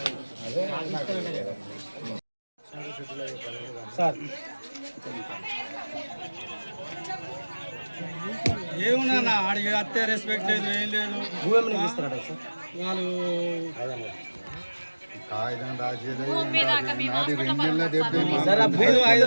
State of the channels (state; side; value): inverted; both; correlation -1.00